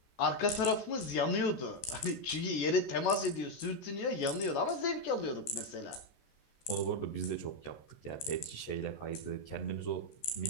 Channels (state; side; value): late; right; 14 ms